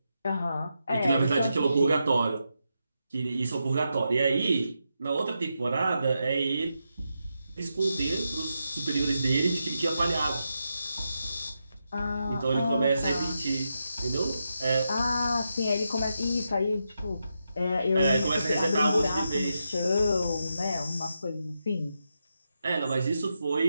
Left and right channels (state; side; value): inverted; both; correlation -0.85